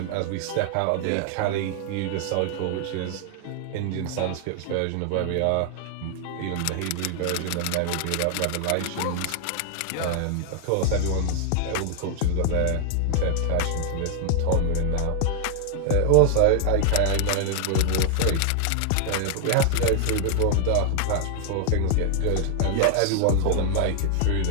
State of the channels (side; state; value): both; different; correlation 0.00